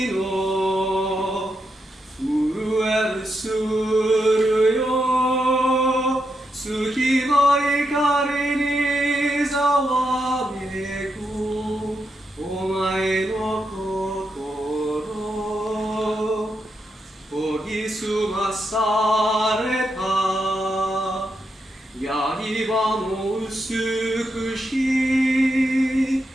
の震えるするよ月の光にざわめくお前の心研ぎ澄まされた刃の美しい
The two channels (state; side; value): normal; both; correlation 0.83